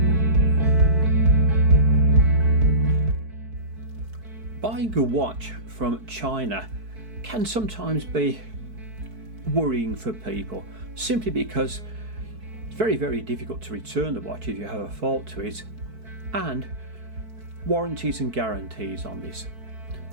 Buying a watch from China can sometimes be worrying for people, simply because it's very difficult to return the watch if you have a fault to it, and warranties and guarantees on this.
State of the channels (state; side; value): late; left; 4.6 ms